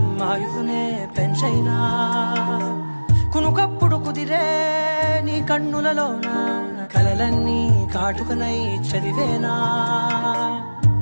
ఆయుధునే పెంచైనా కునుకప్పుడు కుదిరే నీ కన్నులలోన కలలన్నీ కాటుకనై చదివేనా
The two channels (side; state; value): both; inverted; correlation -1.00